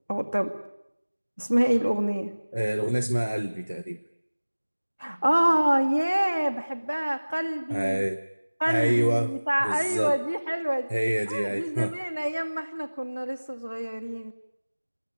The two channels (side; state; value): both; inverted; correlation -1.00